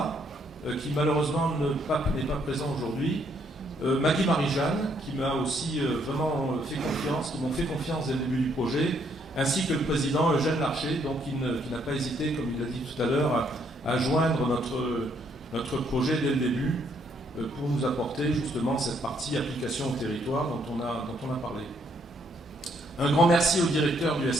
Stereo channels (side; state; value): both; normal; correlation 0.70